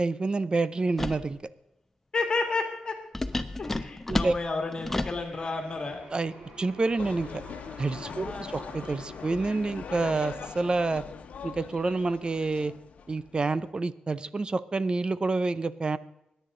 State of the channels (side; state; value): both; normal; correlation 0.91